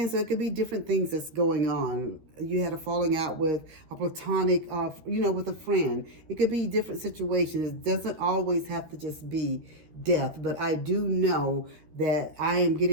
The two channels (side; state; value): left; late; 13 ms